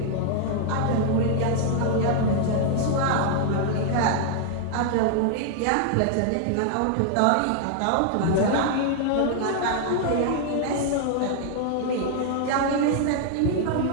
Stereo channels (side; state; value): both; different; correlation 0.00